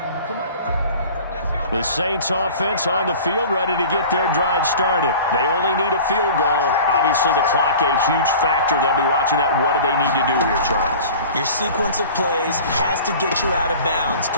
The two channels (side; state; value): both; inverted; correlation -0.41